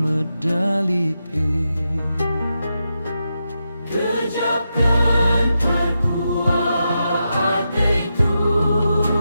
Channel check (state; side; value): inverted; both; correlation -0.87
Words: Gejapkan terkuat hati